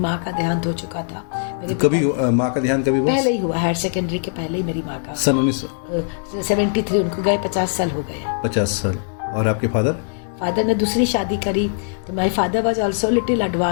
का देहांत हो चुका था। कभी माँ का देहांत कभी पहले ही हुआ, हायर सेकेंडरी के पहले ही मेरी माँ का, सन 1973। उनको गए 50 साल हो गए। 50 साल। और आपके फादर? फादर ने दूसरी शादी करी, तो my father was also little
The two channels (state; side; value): silent; right; digital silence